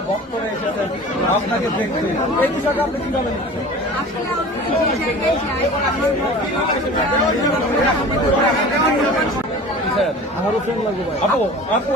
ভক্তরা এসেছেন আপনাকে দেখতে, এই বিষয়টা আপনি কিভাবে নিচ্ছেন? আসলে আমি যে জায়গায় যাই আমারও ফ্রেন্ড লাগবে ভাই। আপু আপু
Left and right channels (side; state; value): both; normal; correlation 0.40